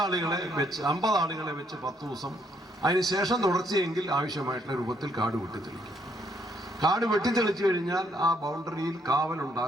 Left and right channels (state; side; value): normal; both; correlation 0.70